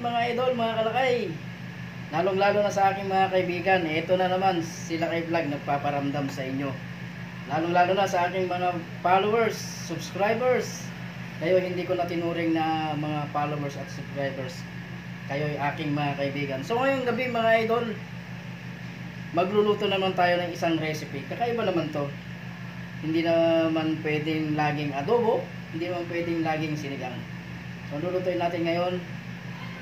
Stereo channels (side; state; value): both; identical; correlation 1.00